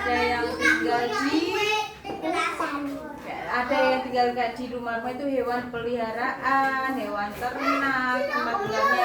ada yang tinggal di rumah itu hewan peliharaan, hewan ternak, tempat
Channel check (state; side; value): identical; both; correlation 1.00